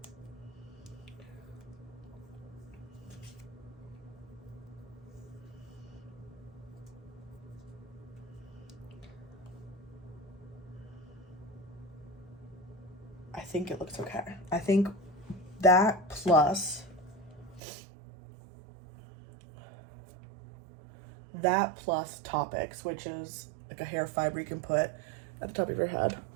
I think it looks okay. I think that plus that plus Toppik, which is like a hair fiber you can put at the top of your head.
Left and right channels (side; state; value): left; drops out; at 17.6 s